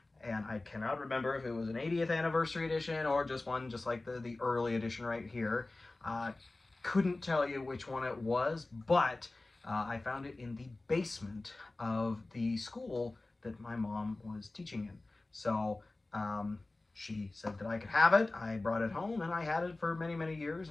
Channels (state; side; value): quieter; right; 3.0 dB